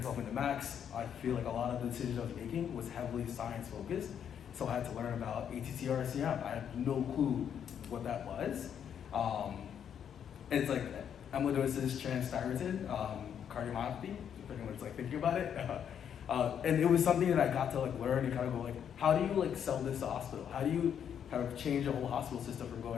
development at Max, I feel like a lot of the decisions I was making was heavily science focused. So I had to learn about ATTR-CM. I had no clue what that was. And it's like amyloidosis transthyretin cardiomyopathy, if anyone's like thinking about it. And it was something that I got to like learn and kind of go like, how do you like sell this to hospital? How do you kind of change the whole hospital system from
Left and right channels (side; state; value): right; quieter; 8.6 dB